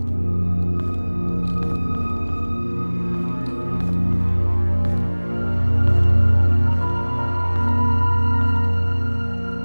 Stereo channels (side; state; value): both; inverted; correlation -1.00